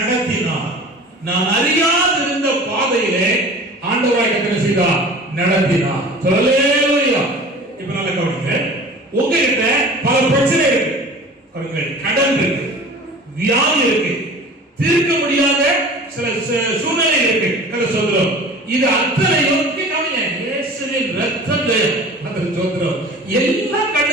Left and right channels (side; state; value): both; normal; correlation 0.41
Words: நான் அறியாதிருந்த பாதையிலே ஆண்டவராய் கர்த்தர் செய்தார், நடத்தினார். அல்லேலூயா. இப்ப நல்ல கவனிங்க. உங்ககிட்ட பல பிரச்சனை இருக்கு. கடன் இருக்கு, வியாதி இருக்கு, தீர்க்க முடியாத சில சூழ்நிலை இருக்கு. கதை சொல்றோம். இது அத்தனையும் கவனிங்க, இயேசுவின் ரத்தத்தை அந்த சொல்றோம். எல்லாம்